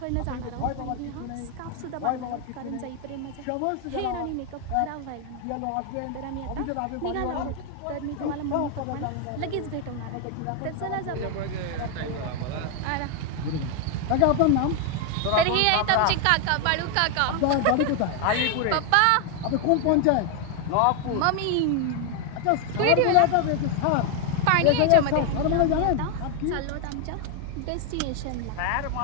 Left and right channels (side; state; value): both; different; correlation 0.00